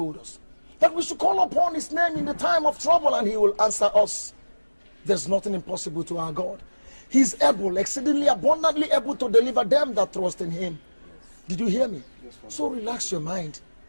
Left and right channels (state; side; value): inverted; both; correlation -1.00